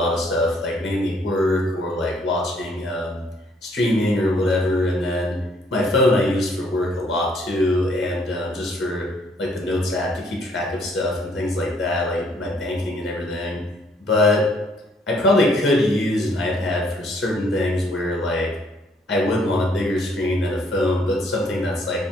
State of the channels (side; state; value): both; normal; correlation 0.66